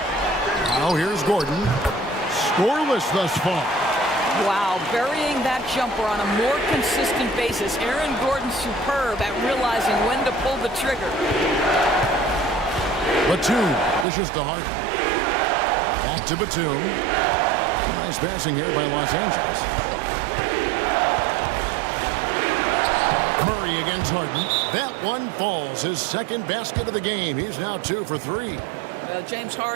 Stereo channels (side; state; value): left; drops out; at 14.1 s